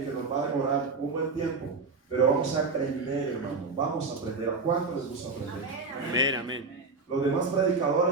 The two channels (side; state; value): left; quieter; 4.2 dB